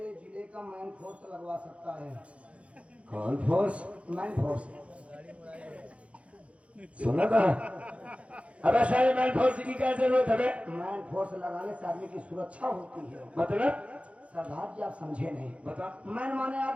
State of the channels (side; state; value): left; late; 0.062 ms